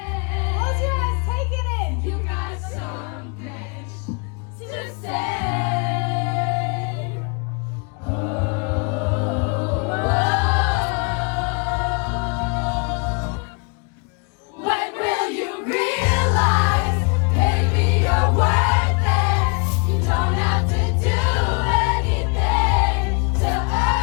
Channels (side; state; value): right; quieter; 34.6 dB